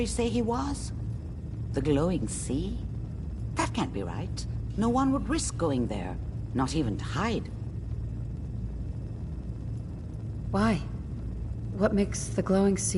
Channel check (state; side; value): identical; both; correlation 1.00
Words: say he was? The glowing sea? That can't be right. No one would risk going there, not even to hide. Why? What makes the glowing